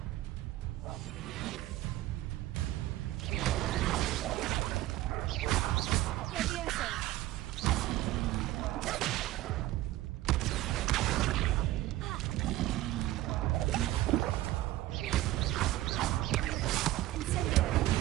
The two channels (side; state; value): left; quieter; 15.9 dB